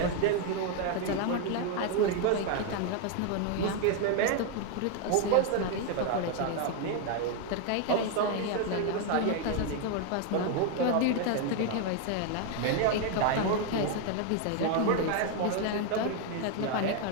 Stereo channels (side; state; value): both; different; correlation 0.01